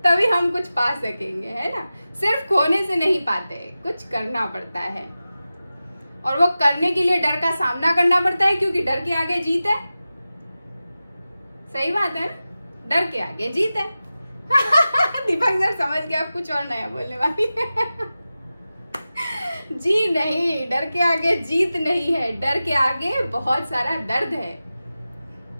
तभी हम कुछ पा सकेंगे, है ना। सिर्फ खोने से नहीं पाते, कुछ करना पड़ता है। और वो करने के लिए डर का सामना करना पड़ता है, क्योंकि डर के आगे जीत है। सही बात है ना, डर के आगे जीत है। दीपक सर समझ गया, आप कुछ और नया बोलने वाली है। जी नहीं, डर के आगे जीत नहीं है, डर के आगे बहुत सारा दर्द है।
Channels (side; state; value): both; inverted; correlation -0.95